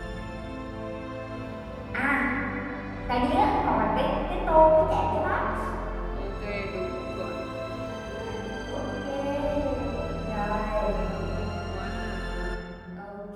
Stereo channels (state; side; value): identical; both; correlation 1.00